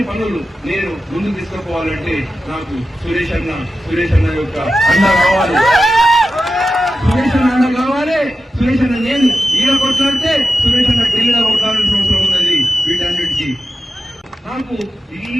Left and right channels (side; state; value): both; normal; correlation 0.92